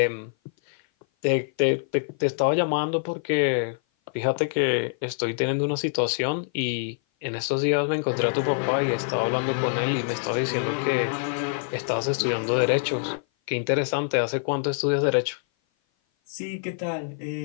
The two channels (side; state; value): right; silent; 56 dB below the other